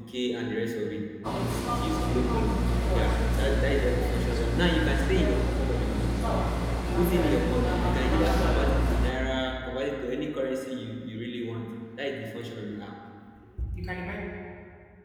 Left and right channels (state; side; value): identical; both; correlation 1.00